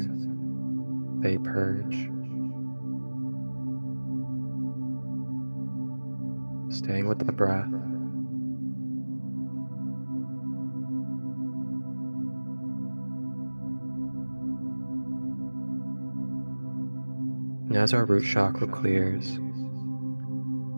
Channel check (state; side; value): inverted; both; correlation -1.00